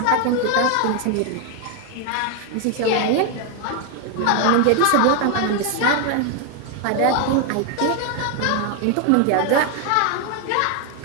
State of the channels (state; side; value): different; both; correlation 0.01